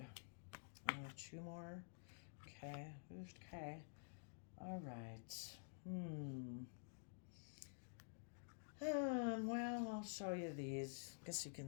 Oh, two more. Okay. Okay. All right. Well, I'll show you these. Guess you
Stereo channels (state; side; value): silent; right; digital silence